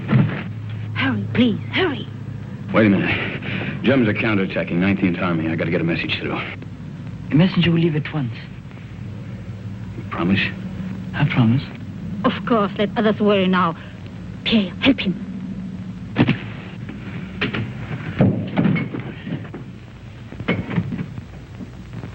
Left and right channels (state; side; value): identical; both; correlation 1.00